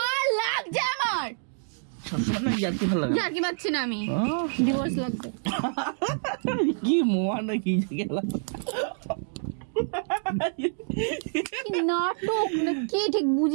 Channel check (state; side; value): silent; left; digital silence